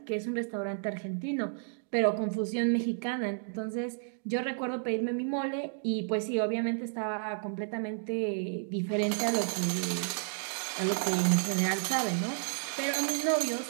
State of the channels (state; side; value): silent; left; digital silence